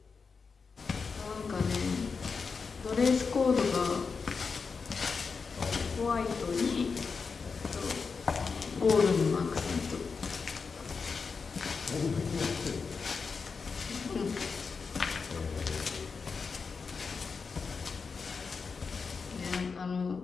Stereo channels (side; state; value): right; quieter; 5.1 dB